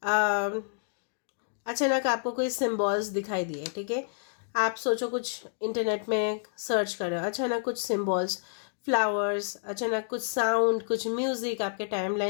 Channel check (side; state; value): right; silent; digital silence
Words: अचानक आपको कोई सिम्बॉल्स दिखाई दिए, ठीक है, आप सोचो कुछ इंटरनेट में सर्च करो, अचानक कुछ सिम्बॉल्स, फ्लावर्स, अचानक कुछ साउंड, कुछ म्यूजिक आपके